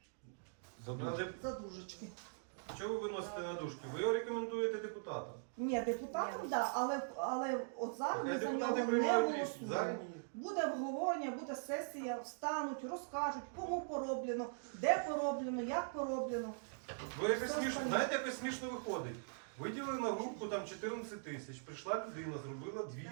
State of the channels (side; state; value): left; silent; digital silence